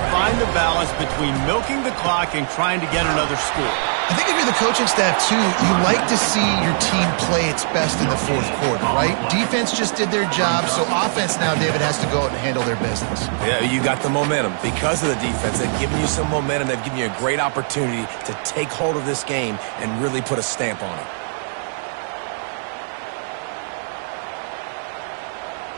find the balance between milking the clock and trying to get another score. I think if you're the coaching staff, too, you like to see your team play its best in the 4th quarter, right? Defense just did their job, so offense now, David, has to go out and handle their business. Yeah, you got the momentum. Because of the defense, they've given you some momentum. They've given you a great opportunity to take hold of this game and really put a stamp on it.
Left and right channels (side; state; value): left; silent; digital silence